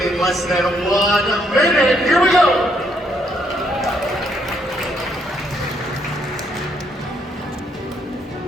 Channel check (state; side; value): normal; both; correlation 0.72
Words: less than 1 minute. Here we go.